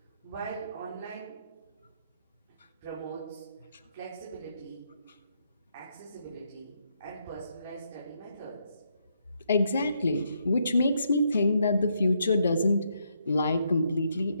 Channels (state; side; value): inverted; both; correlation -0.77